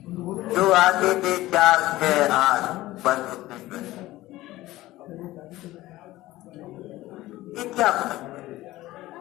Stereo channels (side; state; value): right; quieter; 17.0 dB